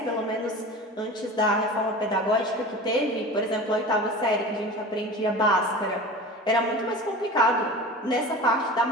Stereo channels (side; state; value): both; normal; correlation 0.35